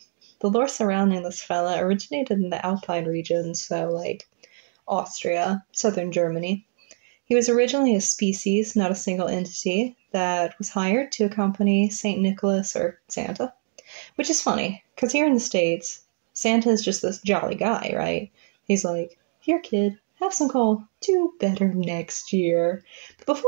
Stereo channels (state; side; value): silent; left; 62 dB below the other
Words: The lore surrounding this fella originated in the Alpine region, so like Austria, southern Germany. He was originally a species, not a single entity, that was hired to accompany St. Nicholas or Santa, which is funny, because here in the States, Santa is just this jolly guy, right? He's like, here, kid, have some coal. Do better next year. But